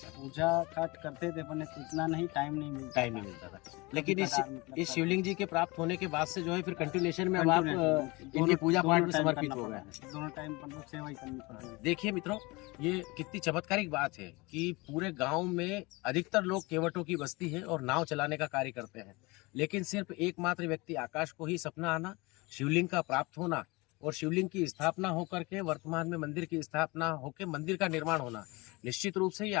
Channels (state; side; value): quieter; right; 24.5 dB